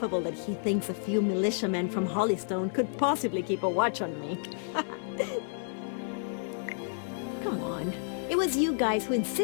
that he thinks a few militiamen from Hollystone could possibly keep a watch on me. Come on. It was you guys who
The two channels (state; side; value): silent; right; digital silence